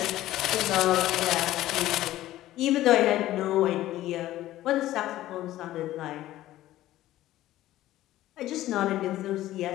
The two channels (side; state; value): right; quieter; 14.8 dB